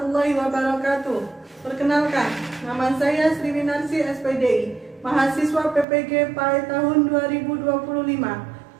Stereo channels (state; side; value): drops out; left; at 5.9 s